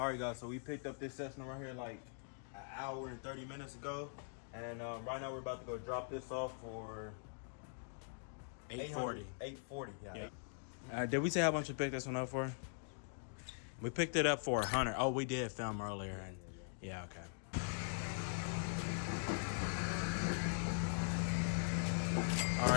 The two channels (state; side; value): silent; right; digital silence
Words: right, guys. So we picked up this section right here like an hour and 30 minutes ago, and right now we're about to go drop this off for $840. $840. Yeah. Did we say how much we picked this one up for? We picked it up for $100. Oh, we did film earlier. Yeah, okay. All